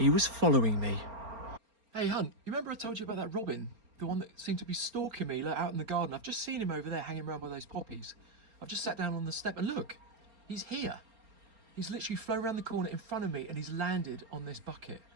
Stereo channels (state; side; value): late; left; 4.3 ms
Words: was following me. Hey, Hunt, you remember I told you about that robin? The one that seemed to be stalking me out in the garden. I've just seen him over there hanging around by those poppies. I've just sat down on the step and look, he's here. He's literally flown around the corner in front of me and he's landed on this bucket.